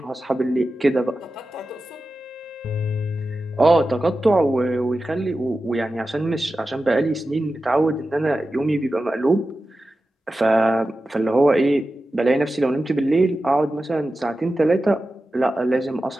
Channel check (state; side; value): normal; both; correlation 0.93